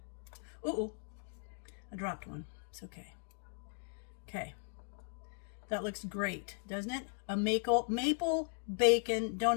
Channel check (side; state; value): right; silent; 53 dB below the other